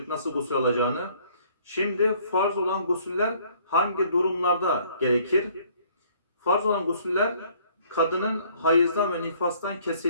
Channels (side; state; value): both; inverted; correlation -0.60